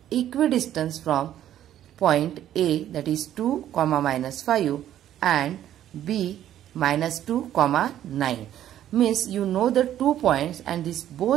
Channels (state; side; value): quieter; left; 11.7 dB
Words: equidistant from point A, that is 2, -5 and B -2, 9. Means you know the 2 points and